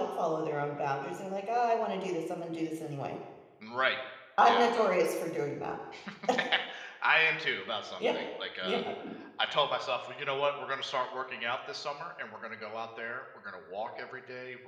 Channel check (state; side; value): identical; both; correlation 1.00